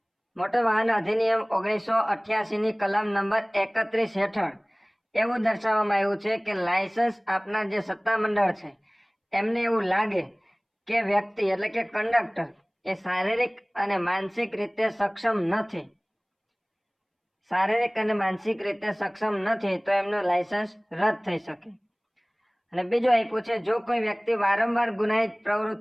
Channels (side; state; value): both; identical; correlation 1.00